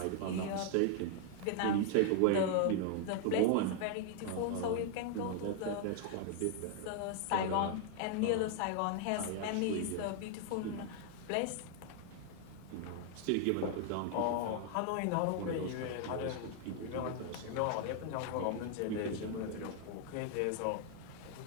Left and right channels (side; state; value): both; different; correlation 0.00